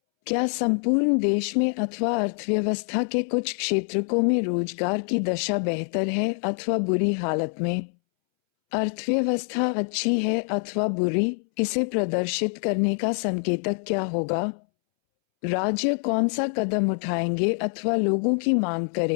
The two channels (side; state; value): right; silent; 62 dB below the other